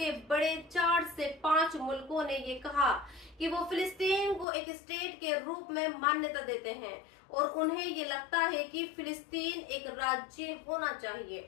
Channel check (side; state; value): right; drops out; at 4.5 s